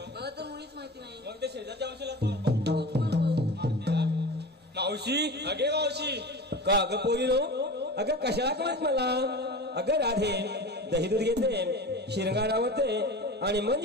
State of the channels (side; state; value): both; normal; correlation 0.32